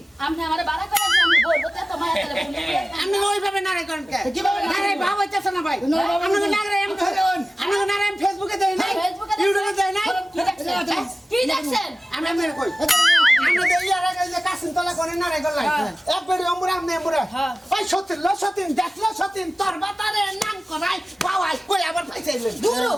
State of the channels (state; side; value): normal; both; correlation 0.96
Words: আপনি আমার বাড়া করেন আমি বলবো তো তোমার আপনি ওইভাবে নারে করেন কে কিভাবে নারে ভাব হইতেছে না ভাই আপনি নারে এম করেন আপনি নারে এম ফেসবুকে দেই নাই ইউটিউবে দেই নাই কি দেখছেন আমি আপনার কই আমরা দেই আর আগে যে কাসিন তলা করে নারে গলাই এক বেরি অমরা আমনে অমরা ওই সতীন দেখলো সতীন তোর বাতারে নাম করাই পাওয়াই কই আবার পাইছাইলেন দূর